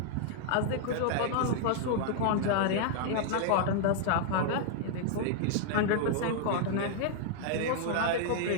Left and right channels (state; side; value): different; both; correlation 0.00